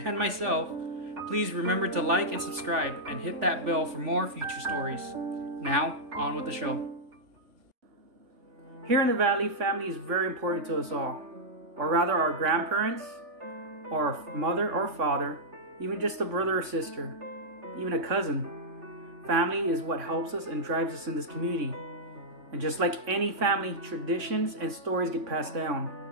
myself, please remember to like and subscribe and hit that bell for more future stories. Now, on with the show. Here in the valley, family is very important to us all. Or rather, our grandparents, or mother or father, even just a brother or sister, even a cousin. Family is what helps us and drives us in this community. And just like any family, traditions and stories get passed down.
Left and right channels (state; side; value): late; left; 3.3 ms